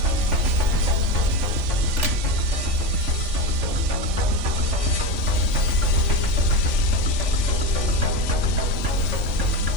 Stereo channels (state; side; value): late; left; 3.5 ms